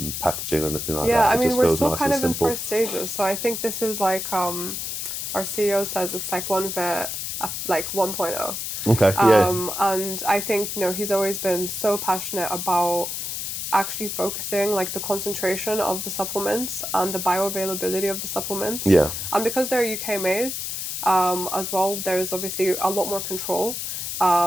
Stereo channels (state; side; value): noise; left; hiss, 4 dB below the sound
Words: packaging or anything like that. Yeah, I mean, we're still kind of in first stages. So I think this is like, our CEO says it's like OneVit, like 1.0. Okay. And I think, he's always been so passionate about actually focusing like the concentration of the supplements and the bioavailability of the supplements. Yeah. And because they're UK made, as well, there's obviously a lot more control.